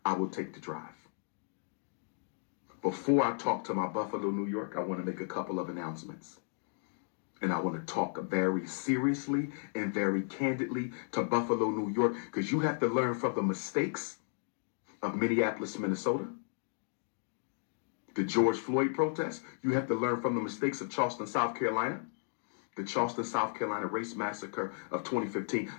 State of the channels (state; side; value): silent; right; digital silence